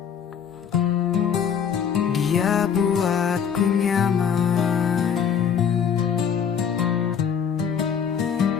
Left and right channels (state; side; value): quieter; right; 7.6 dB